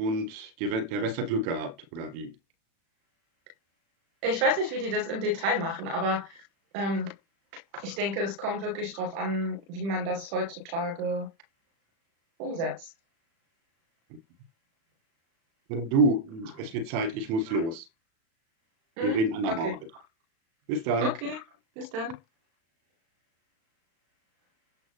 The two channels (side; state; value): left; late; 36 ms